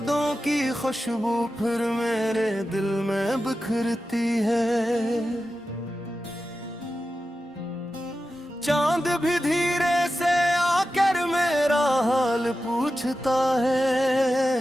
की खुशबू फिर मेरे दिल में बिखरती है। चांद भी धीरे से आकर मेरा हाल पूछता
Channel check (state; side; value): normal; both; correlation 0.92